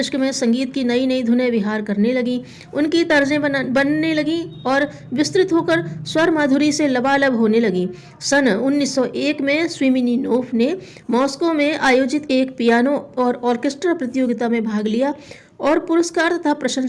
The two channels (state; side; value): identical; both; correlation 1.00